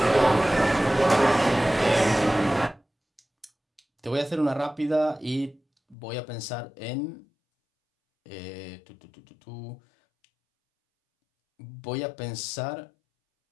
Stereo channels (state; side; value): drops out; right; at 6.0 s